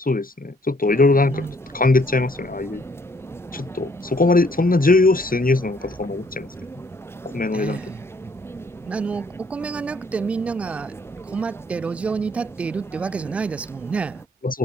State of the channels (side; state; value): both; normal; correlation 0.65